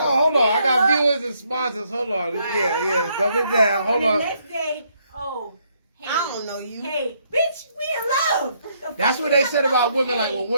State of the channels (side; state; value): both; inverted; correlation -0.72